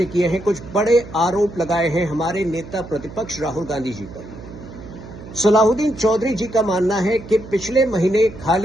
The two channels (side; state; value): right; noise; hum, 15 dB below the sound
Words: किए हैं, कुछ बड़े आरोप लगाए हैं हमारे नेता प्रतिपक्ष राहुल गांधी जी पर। सलाहुद्दीन चौधरी जी का मानना है कि पिछले महीने